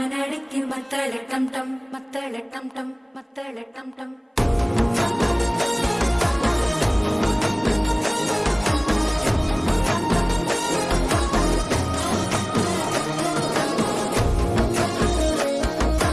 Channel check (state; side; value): identical; both; correlation 1.00